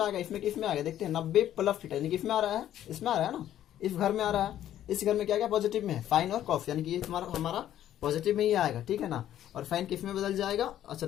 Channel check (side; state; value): right; quieter; 11.8 dB